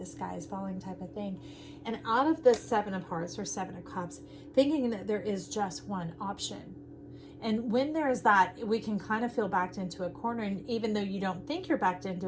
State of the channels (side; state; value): both; identical; correlation 1.00